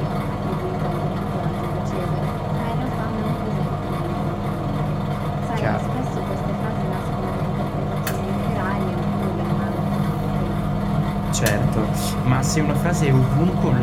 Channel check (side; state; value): both; identical; correlation 1.00